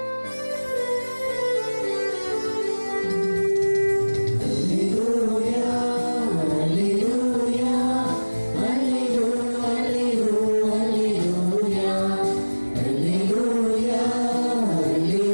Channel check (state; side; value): inverted; both; correlation -1.00